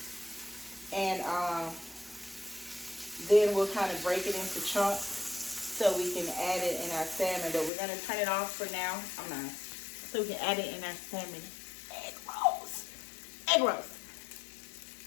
And then we'll kind of break it into chunks so we can add it in our salmon. But we're going to turn it off for now. So we can add it in our salmon egg rolls. Egg rolls.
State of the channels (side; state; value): right; drops out; at 7.7 s